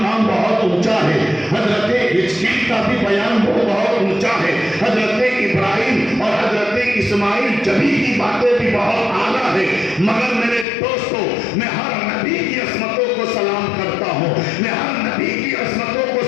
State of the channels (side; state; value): right; drops out; at 10.7 s